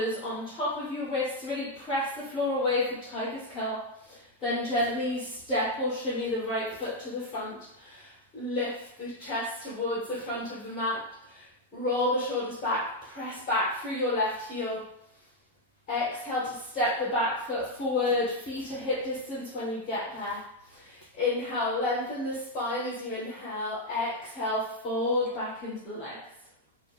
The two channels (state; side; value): normal; both; correlation 0.01